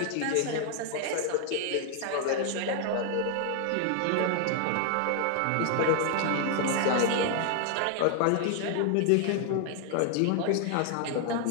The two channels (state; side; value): different; both; correlation 0.00